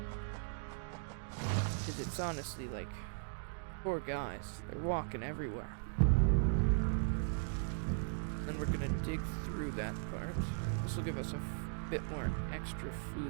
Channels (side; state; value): left; silent; digital silence